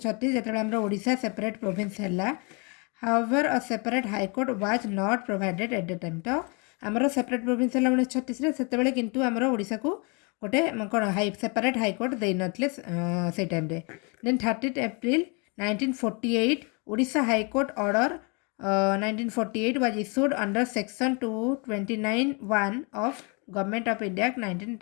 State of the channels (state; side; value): quieter; right; 32.5 dB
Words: जो आमर Odisha separate province है। However a separate high court was not provided at the time. तो आमर सेपरेट प्रोविंस है 1936 से किंतु आमर ओडिशा को गोटे कौन हाई सेपरेट हाईकोर्ट दे नथिले से टाइम रे। Then 30 April 1948 Odisha high court order 1948 was issued under section 229(1) of government of India